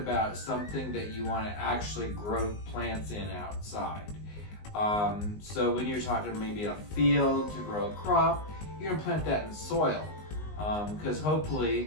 something that you want to actually grow plants in outside. So when you're talking maybe a field to grow a crop, you're going to plant that in soil because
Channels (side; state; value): right; late; 19 ms